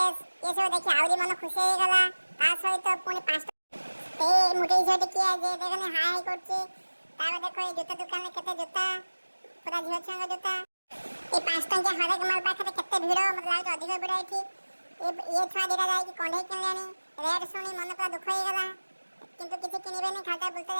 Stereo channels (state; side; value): inverted; both; correlation -1.00